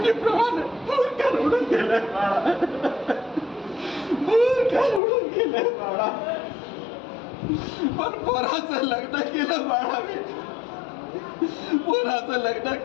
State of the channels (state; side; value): drops out; right; at 5.0 s